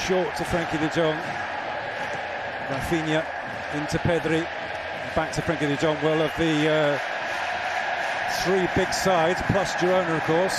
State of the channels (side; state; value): both; identical; correlation 1.00